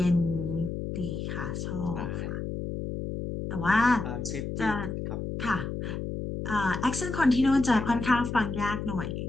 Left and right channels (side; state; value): left; noise; hum, 5 dB below the sound